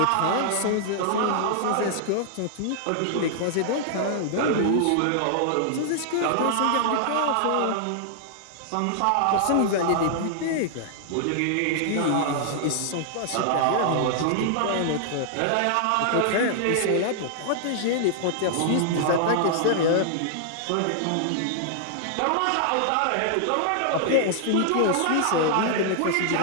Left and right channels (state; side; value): different; both; correlation -0.01